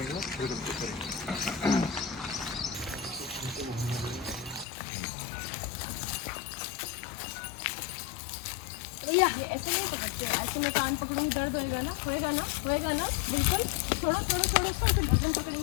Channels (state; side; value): drops out; right; at 4.7 s